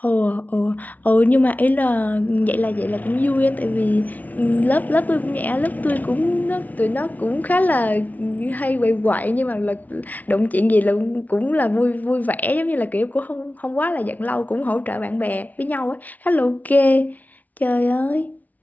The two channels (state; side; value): late; right; 0.075 ms